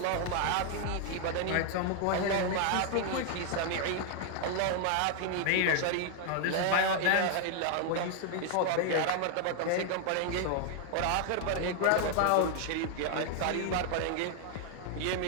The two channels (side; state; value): both; different; correlation 0.00